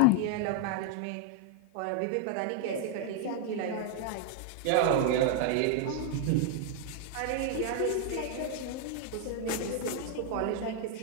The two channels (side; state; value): both; different; correlation 0.00